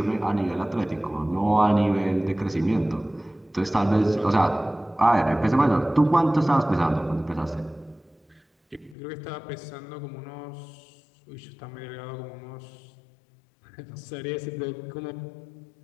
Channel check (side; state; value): right; drops out; at 9.0 s